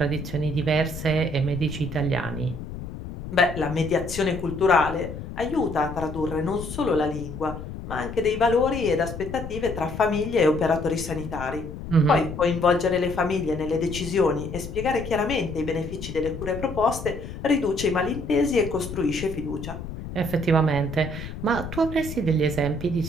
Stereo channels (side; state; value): left; noise; rumble, 9 dB below the sound